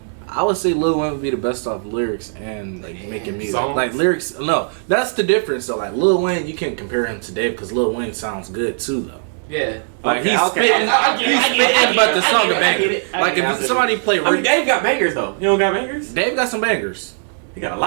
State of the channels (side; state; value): left; silent; digital silence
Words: I would say Lil Wayne would be the best off lyrics and like making music. songs? Like lyrics, no, that's the difference. So like Lil Wayne, you can't compare him to Dave because Lil Wayne sounds good too though. Yeah. Like Okay, he's okay. spitting. I get it. But the song I get it. Like if somebody play, I mean, Dave got bangers though. He don't got bangers. Dave got some bangers. He got a